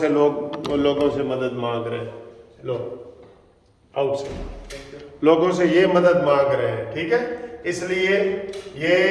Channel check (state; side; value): identical; both; correlation 1.00